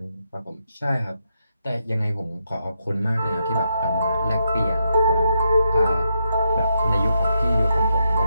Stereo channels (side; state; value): both; inverted; correlation -0.81